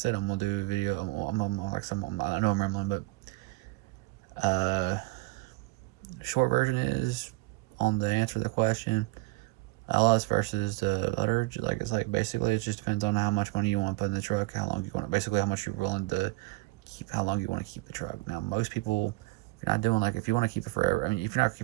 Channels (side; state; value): left; quieter; 21.6 dB